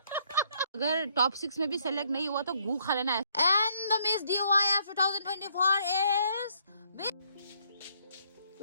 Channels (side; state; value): both; inverted; correlation -0.68